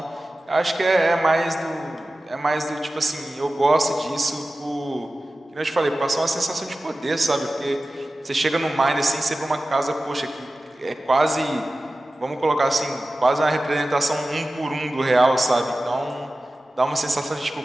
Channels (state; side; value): normal; both; correlation 0.95